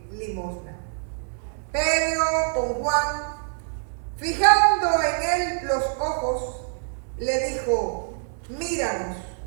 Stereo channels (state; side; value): silent; left; digital silence